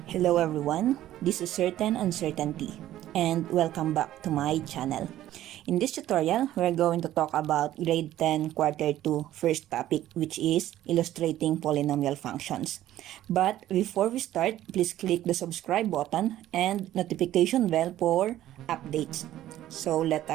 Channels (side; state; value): left; quieter; 13.4 dB